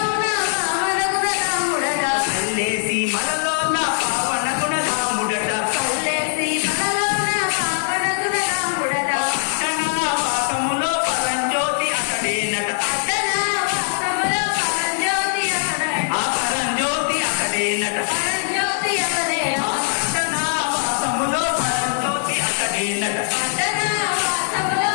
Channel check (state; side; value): silent; right; digital silence